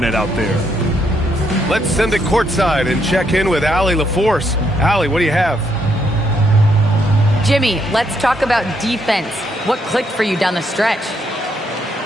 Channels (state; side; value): normal; both; correlation 0.75